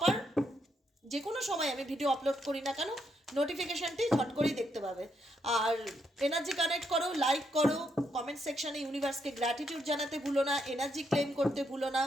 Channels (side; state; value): both; normal; correlation 0.77